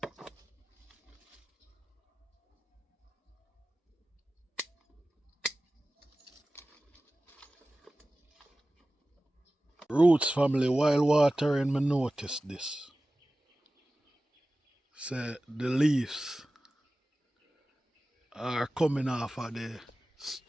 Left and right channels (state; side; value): normal; both; correlation 0.96